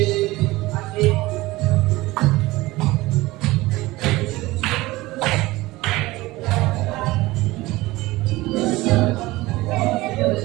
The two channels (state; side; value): quieter; left; 19.5 dB